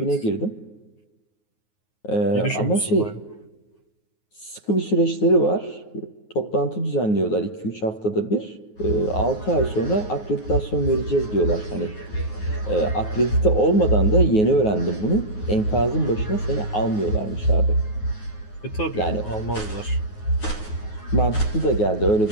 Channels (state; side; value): late; right; 9.5 ms